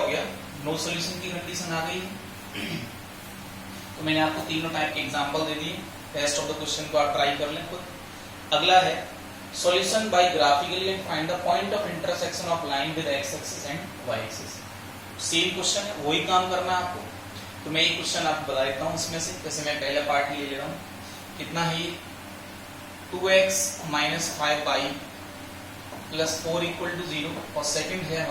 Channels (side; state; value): both; identical; correlation 1.00